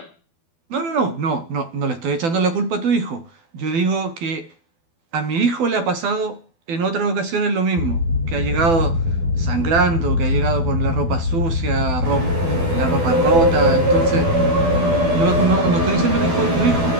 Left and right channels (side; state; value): left; late; 12 ms